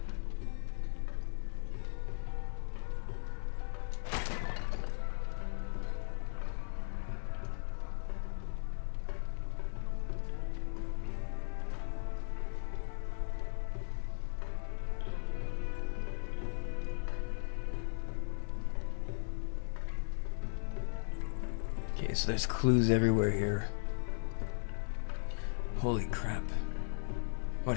Okay, so there's clues everywhere here. Holy crap.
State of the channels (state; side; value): silent; right; 53 dB below the other